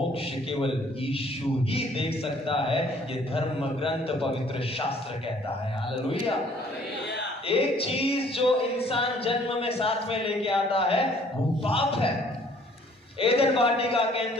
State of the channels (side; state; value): both; normal; correlation 0.58